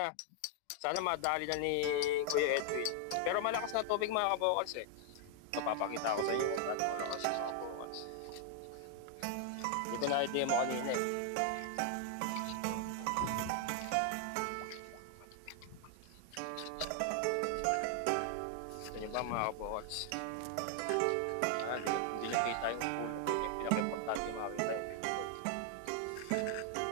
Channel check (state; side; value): different; both; correlation 0.00